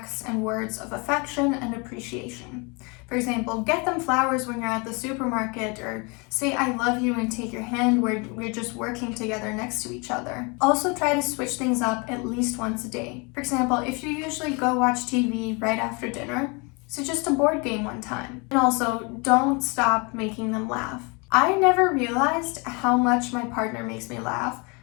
and words of affection and appreciation. For example, get them flowers when you're at the supermarket, or say I love you and take your hand where we're just working together next to each other. Also try to switch things up at least once a day. For example, if you usually go watch TV right after dinner, suggest a board game one time. And also, don't stop making them laugh. I never realized how much my partner makes me laugh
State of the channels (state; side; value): quieter; right; 30.4 dB